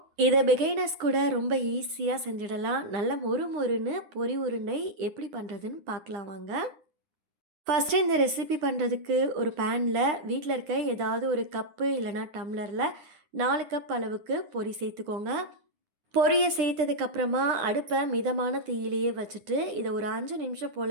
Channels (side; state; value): left; late; 9.8 ms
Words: இதை பிகைனர்ஸ் கூட ரொம்ப ஈஸியாக செஞ்சிடலாம். நல்ல மொறுன்னு பொரி உருண்டை எப்படி பண்ணுறதுன்னு பார்க்கலாம் வாங்க. ஃபஸ்ட்டு இந்த ரெசிபி பண்ணுறதுக்கு ஒரு பேனில் வீட்டில் இருக்க ஏதாவது ஒரு கப்பு இல்லைனா டம்ளரில் 4 கப் அளவுக்கு பொரி சேர்த்துக்கோங்க. பொரியை சேர்த்ததுக்கப்புறமா அடுப்பை மிதமான தீயிலேயே வச்சுட்டு இதை ஒரு 5 நிமிஷம்